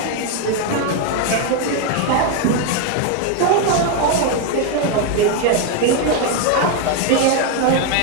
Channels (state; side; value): different; both; correlation 0.01